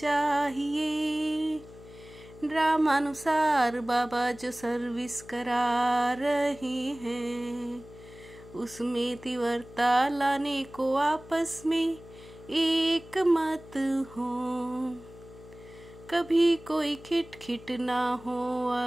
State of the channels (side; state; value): left; noise; hum, 19 dB below the sound